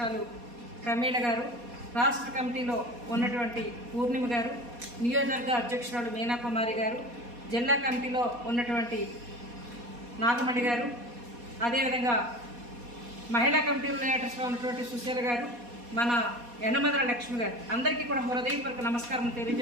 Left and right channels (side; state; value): left; late; 4.2 ms